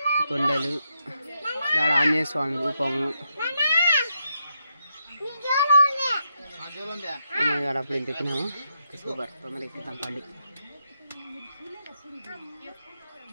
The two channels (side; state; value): both; inverted; correlation -0.80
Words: కొండలు, దాడ ఆంజనేయ స్వామి రూపము. అప్పుడు ఇంత ఎక్కినాము. సూపర్, తొందర ఎక్కుతాం పండి.